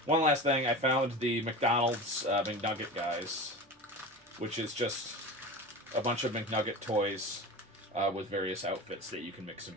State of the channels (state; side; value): normal; both; correlation 0.31